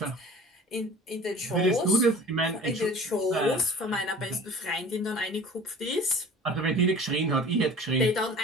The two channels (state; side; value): normal; both; correlation 0.43